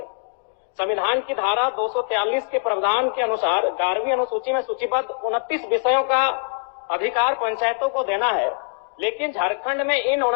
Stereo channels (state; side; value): silent; right; 63 dB below the other